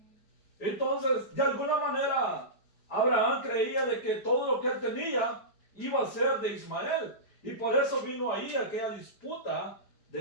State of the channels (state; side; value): late; right; 4.9 ms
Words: Entonces, de alguna manera, Abraham creía de que todo lo que él tenía iba a ser de Ismael. Y por eso vino ahí aquella disputa